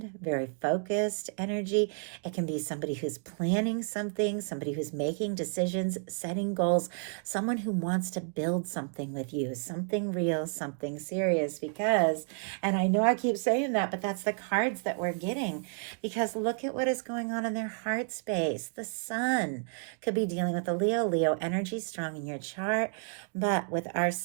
very focused energy. It can be somebody who's planning something, somebody who's making decisions, setting goals, someone who wants to build something with you, something real, something serious, because, and I know I keep saying that, but that's the cards that we're getting, because look at what is going on in their heart space. The Sun could be dealing with the Leo energy strong in your chart, but with our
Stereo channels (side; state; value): left; silent; 55 dB below the other